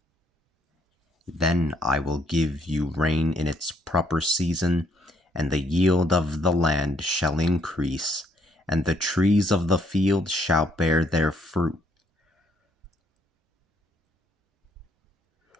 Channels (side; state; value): both; normal; correlation 0.69